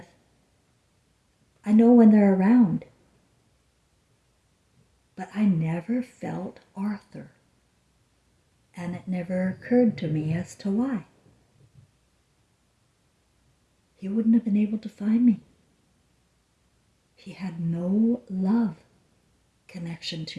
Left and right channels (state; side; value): identical; both; correlation 1.00